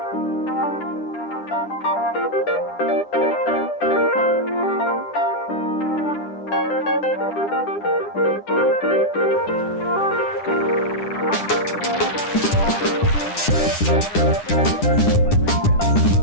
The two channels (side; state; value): right; late; 9.9 ms